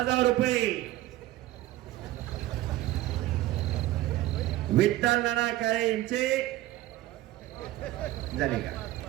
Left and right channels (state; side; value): quieter; left; 15.7 dB